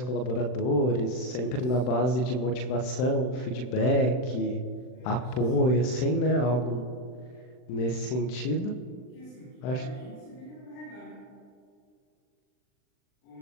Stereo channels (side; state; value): right; late; 39 ms